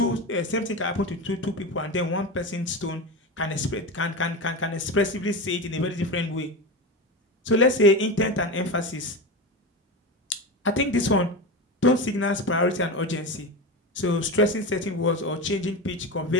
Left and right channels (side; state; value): both; normal; correlation 0.22